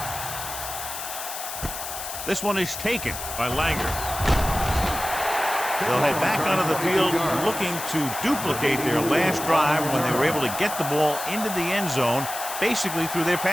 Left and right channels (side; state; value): left; noise; hiss, 7 dB below the sound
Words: This one is taken by Langer. They'll head back onto the field looking to duplicate their last drive when they were able to get the ball into the end zone, basically through their